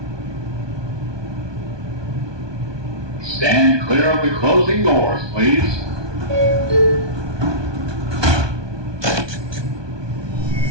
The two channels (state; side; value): late; left; 1.2 ms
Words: Stand clear of the closing doors, please.